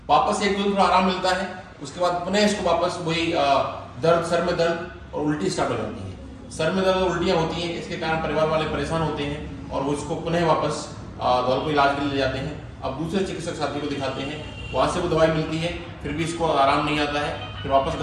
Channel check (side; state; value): both; identical; correlation 1.00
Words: वापस एक दो दिन थोड़ा आराम मिलता है, उसके बाद पुनः इसको वापस वही दर्द, सर में दर्द और उल्टी स्टार्ट हो जाती है। सर में दर्द और उल्टियाँ होती हैं, इसके कारण परिवार वाले परेशान होते हैं और वो इसको पुनः वापस धौलपुर इलाज के लिए ले जाते हैं। अब दूसरे चिकित्सक साथी को दिखाते हैं, वहाँ से वो दवाई मिलती है, फिर भी इसको आराम नहीं आता है। फिर वापस